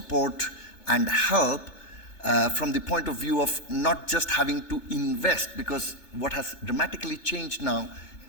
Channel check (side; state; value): right; late; 3.4 ms